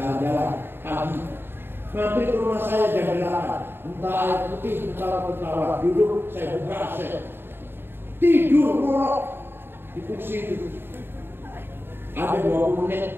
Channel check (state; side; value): late; left; 0.10 ms